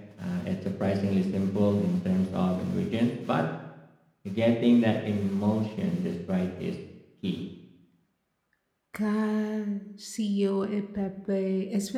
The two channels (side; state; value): both; identical; correlation 1.00